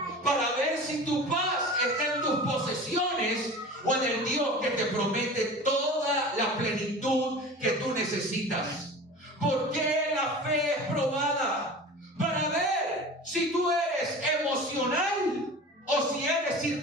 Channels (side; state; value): both; normal; correlation 0.37